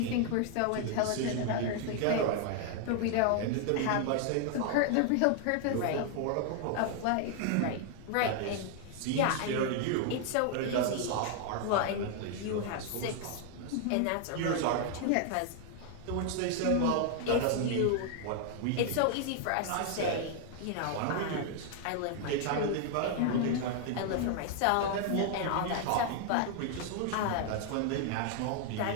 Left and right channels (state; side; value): different; both; correlation 0.00